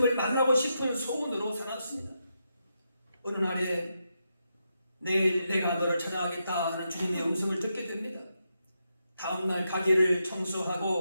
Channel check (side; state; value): both; inverted; correlation -0.84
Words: 만나고 싶은 소원으로 살았습니다. 어느 날에 내일 내가 너를 찾아가겠다 하는 주님의 음성을 듣게 됩니다. 다음날 가게를